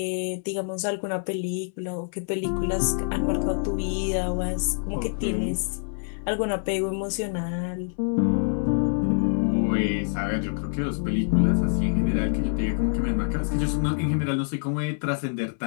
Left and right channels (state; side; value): silent; right; 61 dB below the other